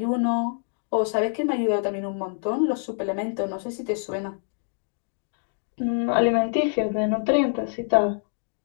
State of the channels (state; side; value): silent; right; 61 dB below the other